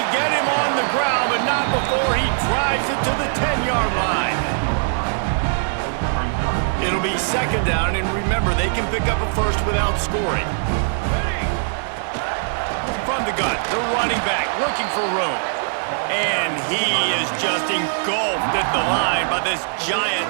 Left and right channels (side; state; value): left; silent; digital silence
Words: get him on the ground, but not before he drives it to the 10-yard line. It'll be second down, and remember, they can pick up a first without scoring. From the gun, the running back looking for room. And he is just engulfed at the line by this